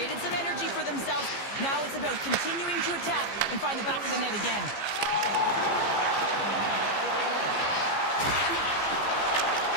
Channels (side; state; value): right; late; 15 ms